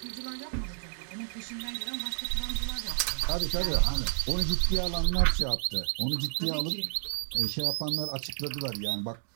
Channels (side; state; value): left; silent; digital silence